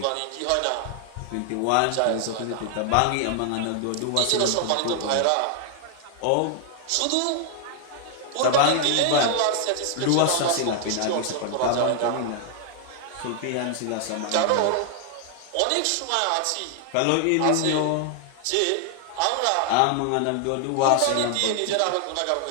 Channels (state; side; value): different; both; correlation 0.00